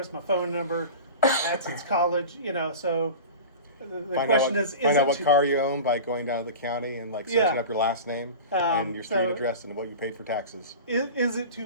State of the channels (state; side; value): inverted; both; correlation -0.33